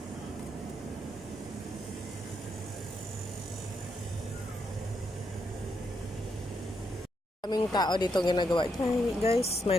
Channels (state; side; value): normal; both; correlation 0.79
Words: Kaming tao dito ginagawa. Guys,